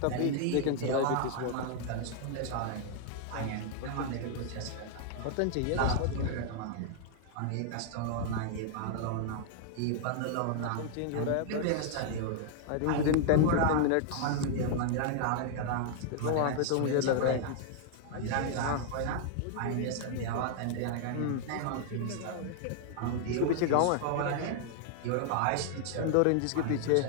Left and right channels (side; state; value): both; different; correlation -0.01